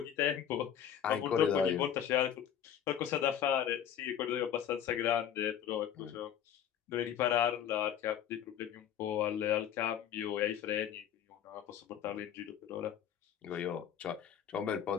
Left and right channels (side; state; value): right; quieter; 9.6 dB